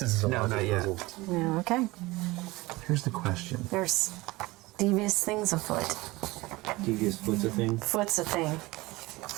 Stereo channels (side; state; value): left; quieter; 21.0 dB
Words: it's a No, logic not yet. puzzle. Yeah, okay. Here's the question. There's devious things afoot. Devious foot's a thing. Foot's a thing.